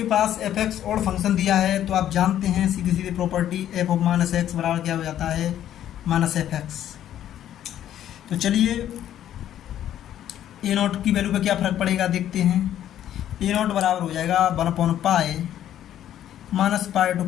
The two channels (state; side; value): quieter; right; 11.3 dB